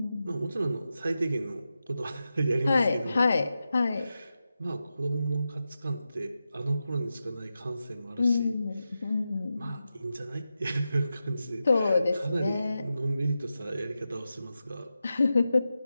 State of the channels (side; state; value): both; inverted; correlation -0.90